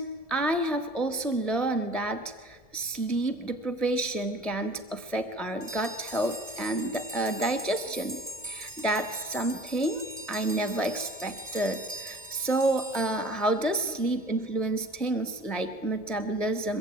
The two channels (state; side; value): late; right; 1.7 ms